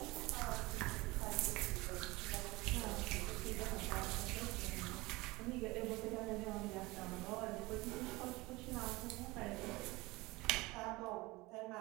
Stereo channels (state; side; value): quieter; left; 21.9 dB